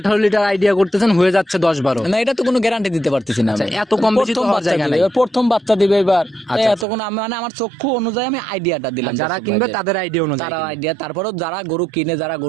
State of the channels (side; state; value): left; drops out; at 6.9 s